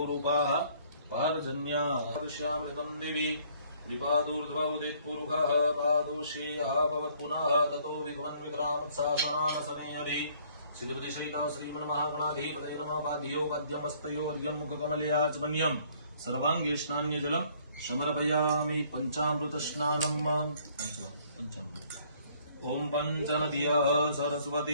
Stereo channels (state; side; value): inverted; both; correlation -0.61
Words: भारजन्याश्यामृतं देवी विपादूर्ध्वौदित्पुरुषः पादोष्येयः भवत्पुनः ततो विगमन्वितरामत्सासनानसनेयरे सिद्धिपतिशयिता श्रीमन्महागणाधिपतये नमः पाद्यो मध्यमस्तयोर्यं मुखकमलयाचमन्यं सर्वांगे स्नान्यजलम् समर्पयामि पंचामृतस्नानम् पंचामृत ओम पंचनद्यः